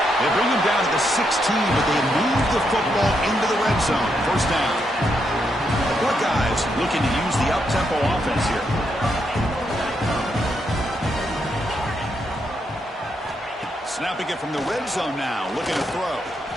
They bring him down to the 16, but they move the football into the red zone. 1st down. The Buckeyes looking to use the up-tempo offense here. Snapping it from the red zone now, looking to throw.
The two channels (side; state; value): both; normal; correlation 0.79